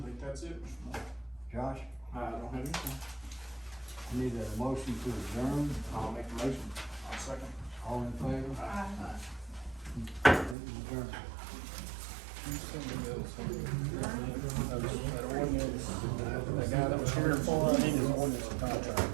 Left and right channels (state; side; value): drops out; left; at 10.6 s